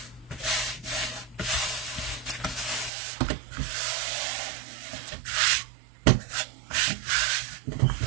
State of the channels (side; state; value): left; drops out; at 2.9 s